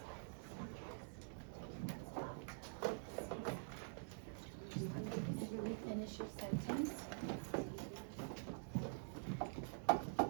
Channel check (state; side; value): silent; left; digital silence